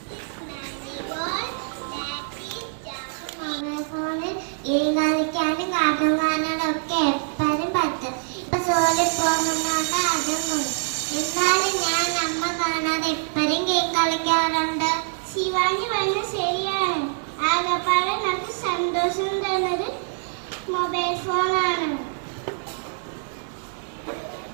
Marigold. That is jasmine. Game കളിക്കാനും cartoon കാണാനും ഒക്കെ എപ്പോഴും പറ്റും. ഇപ്പൊ സോളിൽ പോകുന്നോണ്ട് അതും പോയി. എന്നാലും ഞാൻ അമ്മ കാണാതെ എപ്പോഴും ഗെയിം കളിക്കാറുണ്ട്. ശിവാനി പറഞ്ഞ ശരിയാണ്. ആകപ്പാടെ നമുക്ക് സന്തോഷം തരുന്നത് മൊബൈൽ ഫോണാണ്.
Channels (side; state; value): left; silent; 62 dB below the other